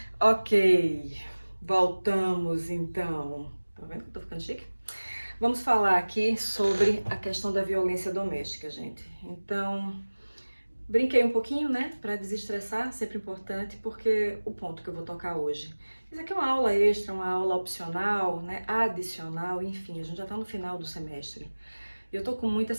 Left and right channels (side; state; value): both; inverted; correlation -1.00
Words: Ok, voltamos então. Tá vendo que eu tô ficando chique? Vamos falar aqui sobre a questão da violência doméstica, gente. Então, brinquei um pouquinho, né, para desestressar, sempre importante, porque o ponto que eu vou tocar hoje. Isso aqui é uma aula extra, uma aula opcional, né, adicional, enfim, a gente já tá no final do semestre. Eu tô com muita